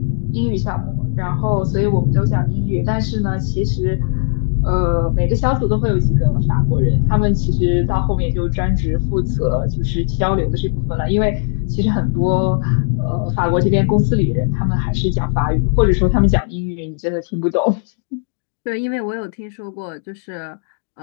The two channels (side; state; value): right; silent; digital silence